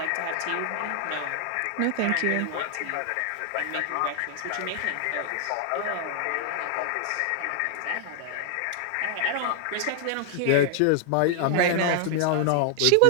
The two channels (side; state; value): both; different; correlation 0.00